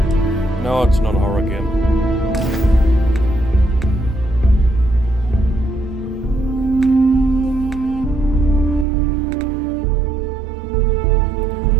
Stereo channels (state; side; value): drops out; left; at 8.8 s